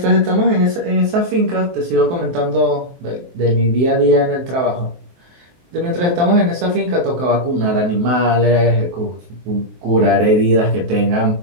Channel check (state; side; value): late; left; 23 ms